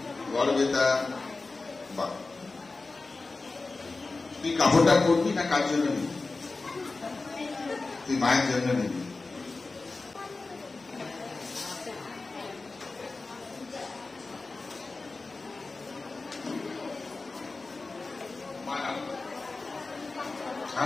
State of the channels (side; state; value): right; quieter; 3.7 dB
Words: গড়বেতা। বা তুই কাপড়টা পরবি না কার জন্য নিবি? তুই মায়ের জন্য নিবি।